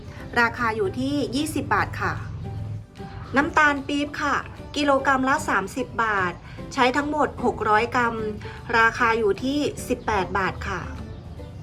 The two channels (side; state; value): both; identical; correlation 1.00